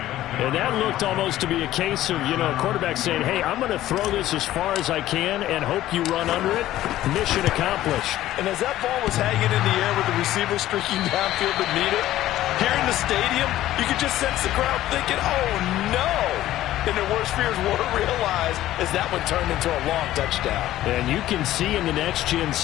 And that looked almost to be a case of, quarterback saying, hey, I'm going to throw this as far as I can and hope you run under it. Mission accomplished. And as that ball was hanging in the air with the receiver streaking downfield to meet it, here in the stadium, you could just sense the crowd thinking, oh, no. and their worst fears were realized as that one turned into a long touchdown. And you can see in the next-gen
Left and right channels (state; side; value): quieter; right; 14.2 dB